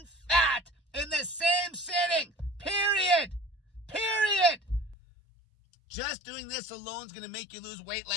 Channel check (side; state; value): right; drops out; at 5.0 s